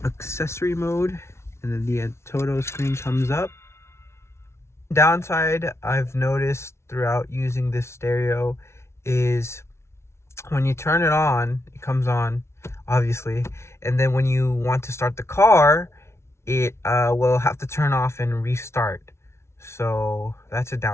accessory mode, and then the ATOTO screen comes up. Downside I've noticed throughout using this stereo is when you turn it on, it comes on obviously, and then when you want to start the car, it will have to turn off and restart. So that's a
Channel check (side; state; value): right; late; 0.13 ms